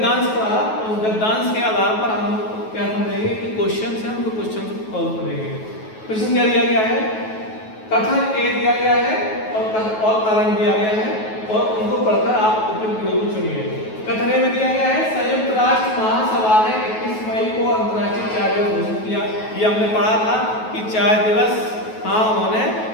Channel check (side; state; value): right; late; 9.3 ms